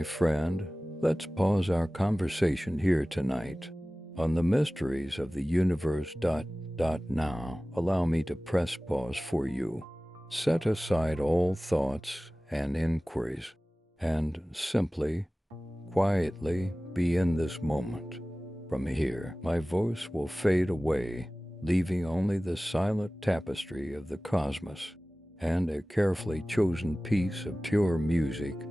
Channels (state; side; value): normal; both; correlation 0.97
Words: friend, let's pause our conversation here tonight on the mysteries of the universe. Now, allow me to press pause for you. Set aside all thoughts and inquiries and simply, quietly be in this moment. From here, my voice will fade away, leaving only the silent tapestry of the cosmos and a carefully chosen piece of pure music